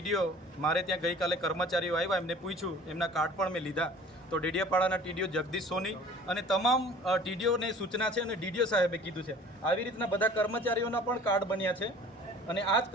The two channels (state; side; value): normal; both; correlation 0.47